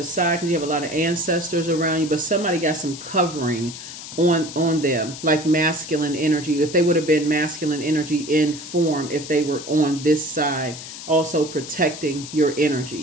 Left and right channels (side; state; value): left; noise; hiss, 12 dB below the sound